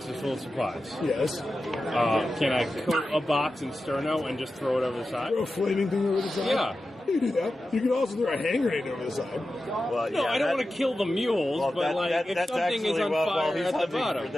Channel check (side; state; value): both; normal; correlation 0.92